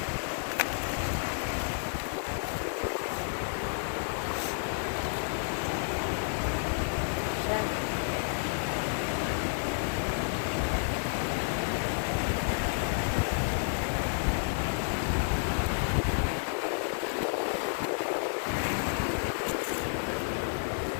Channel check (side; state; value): right; silent; digital silence